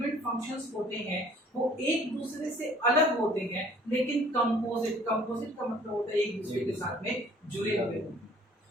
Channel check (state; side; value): normal; both; correlation 0.55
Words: फंक्शंस होते हैं वो एक दूसरे से अलग होते हैं लेकिन कंपोजिट का मतलब होता है एक दूसरे के साथ में जुड़े हुए होते हैं।